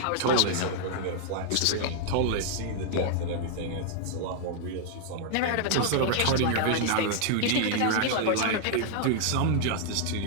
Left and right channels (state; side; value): different; both; correlation -0.01